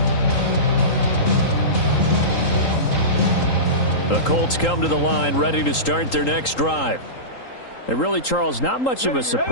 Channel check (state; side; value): late; right; 3.8 ms